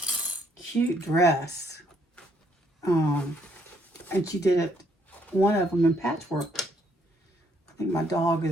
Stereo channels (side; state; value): both; normal; correlation 0.69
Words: cute dress. And she did it, one of them in patchwork. I think my dog